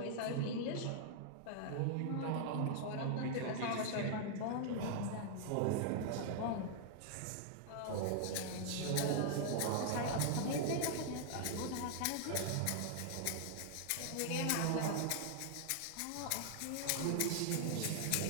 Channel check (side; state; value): both; different; correlation -0.01